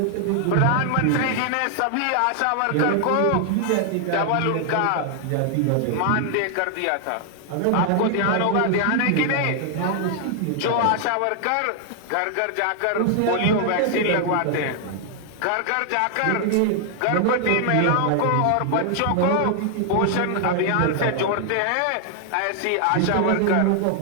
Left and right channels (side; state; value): both; different; correlation 0.00